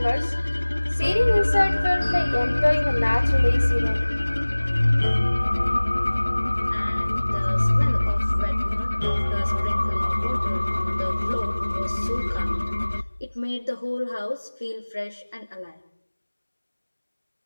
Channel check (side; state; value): both; inverted; correlation -1.00